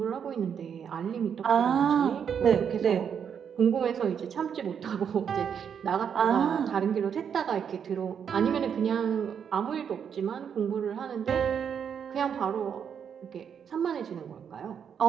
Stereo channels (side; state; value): left; quieter; 7.7 dB